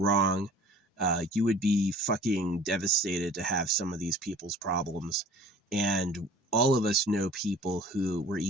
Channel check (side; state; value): both; normal; correlation 0.47